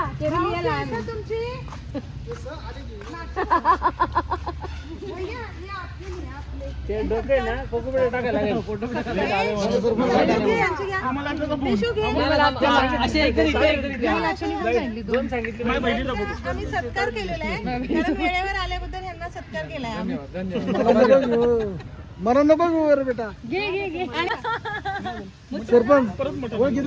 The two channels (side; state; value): both; identical; correlation 1.00